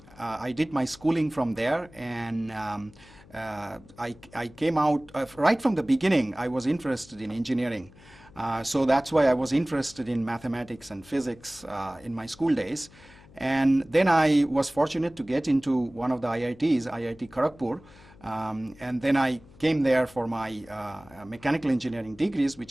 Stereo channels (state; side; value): noise; left; hum, 24 dB below the sound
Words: did my schooling from there, and I came out right from the beginning. I was interested in engineering. So that's why I was interested in mathematics and physics in my school days. And then I was fortunate to get into one of the IITs, IIT Kharagpur. And then I came there for my mechanical engineering degrees,